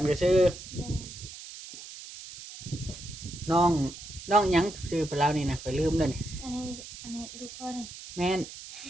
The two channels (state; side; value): noise; right; hiss, 13 dB below the sound